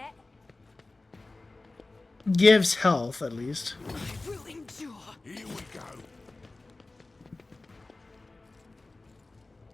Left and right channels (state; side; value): quieter; right; 3.2 dB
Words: gives health at least. I will endure. Here we go.